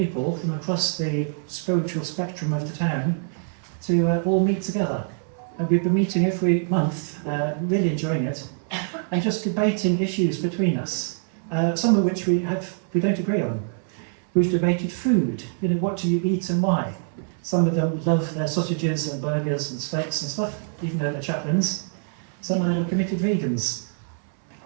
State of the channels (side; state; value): left; silent; 62 dB below the other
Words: from across the spiritual spectrum of the town to all meet together. And we've been meeting every month, really enjoying it, and just debating issues between us, some of which we don't agree on. We've debated food, what do you eat and why? Some of them love their sausages and burgers and steaks and stuff, even though they're chaplains. Some of them are committed vegans.